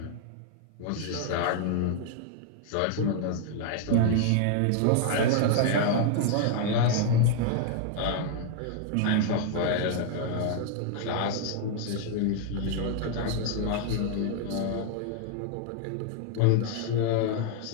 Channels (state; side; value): different; both; correlation 0.00